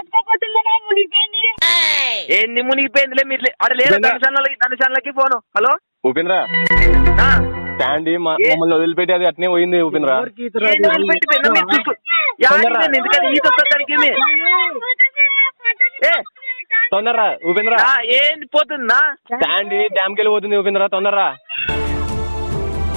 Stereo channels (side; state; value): both; inverted; correlation -1.00